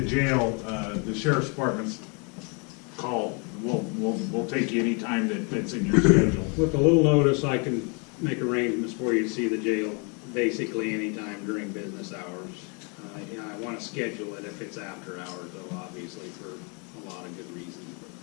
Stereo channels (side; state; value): right; quieter; 34.5 dB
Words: jail, the sheriff's department's call. We'll take you any time that fits in your schedule. With a little notice, I can make arrangements for you to see the jail basically anytime during business hours. I want to schedule it if it's after hours, though, obviously, for a lot of good reasons.